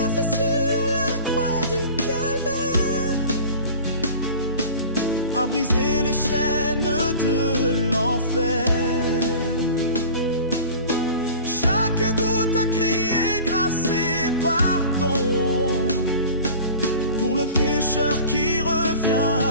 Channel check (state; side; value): inverted; both; correlation -0.40